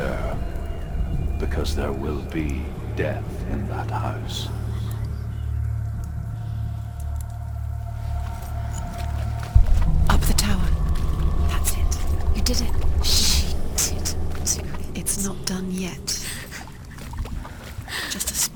because there will be death in that house. Up the tower. That's it. You did it. She did. It's not done yet. Just a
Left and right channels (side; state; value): both; identical; correlation 1.00